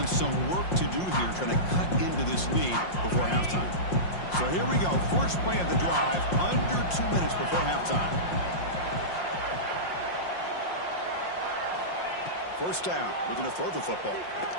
some work to do here trying to cut into this lead before halftime. So here we go. First play of the drive under 2 minutes before halftime. First down. Looking to throw the football.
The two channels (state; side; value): late; right; 5.6 ms